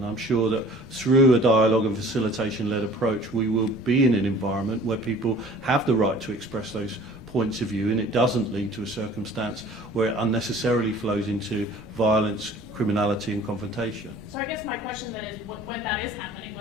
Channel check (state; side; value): noise; right; rumble, 25 dB below the sound